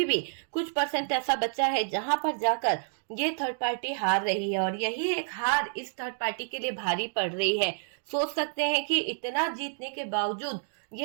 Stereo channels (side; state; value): left; silent; digital silence